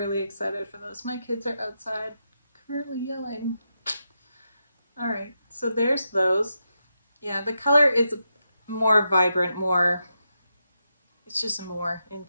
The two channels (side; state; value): both; inverted; correlation -0.86